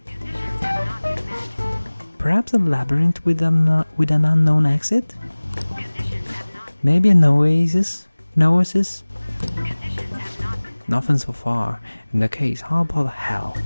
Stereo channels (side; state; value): both; inverted; correlation -1.00